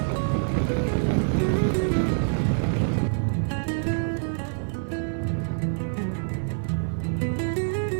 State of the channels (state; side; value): silent; left; 61 dB below the other